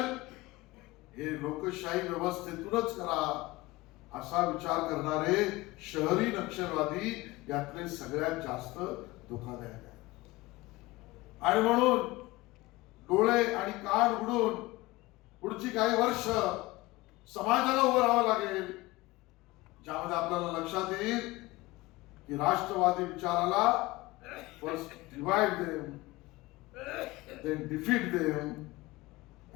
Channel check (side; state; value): right; quieter; 20.4 dB